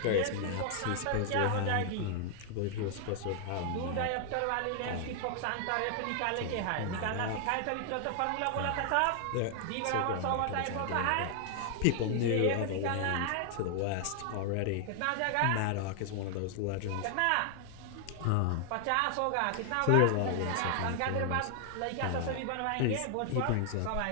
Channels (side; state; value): both; different; correlation 0.00